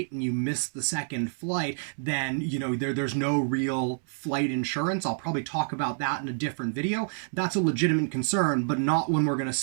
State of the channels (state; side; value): silent; left; 59 dB below the other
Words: and you miss the second flight, then there's no real flight insurance. I'll probably talk about that in a different video. That's a legitimate concern, but not when we're going to